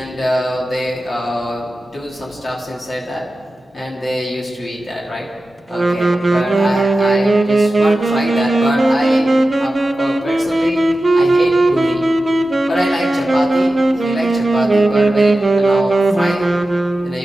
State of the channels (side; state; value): both; normal; correlation 0.94